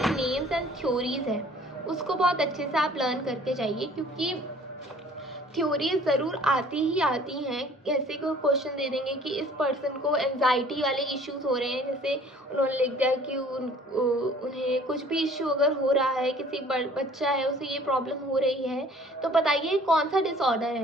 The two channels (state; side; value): normal; both; correlation 0.53